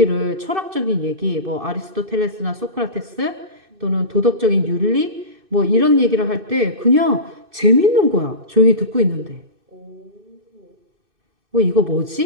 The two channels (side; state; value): left; late; 2.6 ms